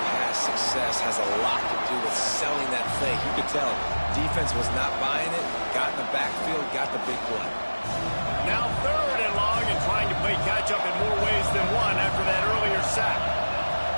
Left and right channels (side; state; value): both; inverted; correlation -1.00